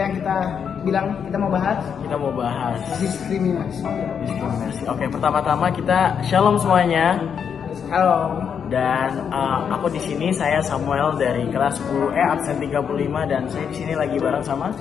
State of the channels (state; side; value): quieter; right; 7.3 dB